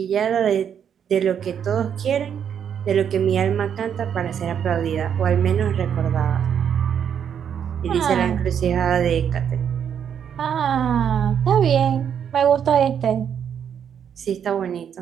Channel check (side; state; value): left; quieter; 8.3 dB